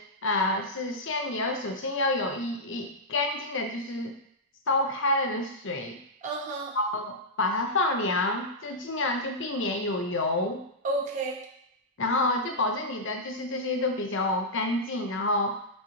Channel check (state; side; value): normal; both; correlation -0.09